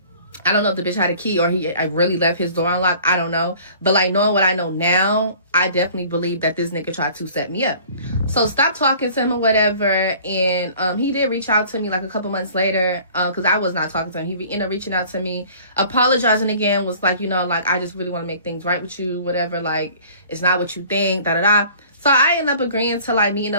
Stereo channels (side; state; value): both; inverted; correlation -0.49